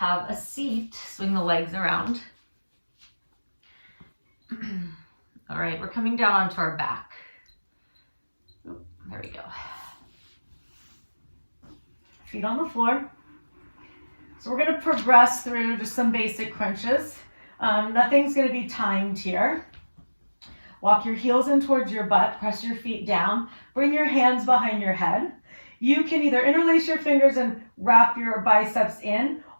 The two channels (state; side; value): inverted; both; correlation -1.00